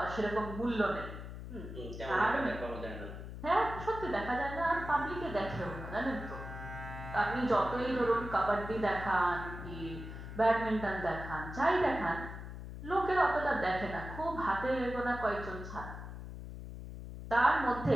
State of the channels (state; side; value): noise; left; hum, 10 dB below the sound